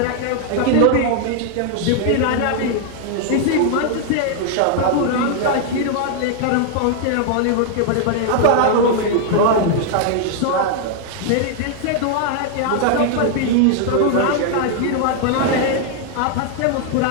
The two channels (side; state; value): both; different; correlation 0.00